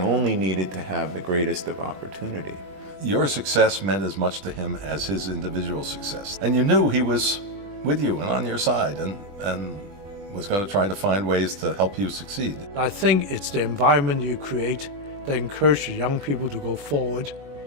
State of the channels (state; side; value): late; left; 20 ms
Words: only needed to have the greatest of opportunity. Your success meant as much to him as his individual success. And you knew he was with you and on your side and was going to try to find ways to help you succeed. I think it's the environment you create that encourages young people to go forward